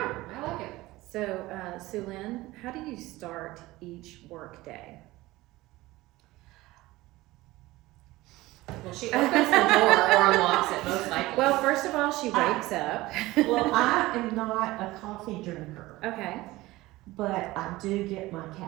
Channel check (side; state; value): left; quieter; 18.9 dB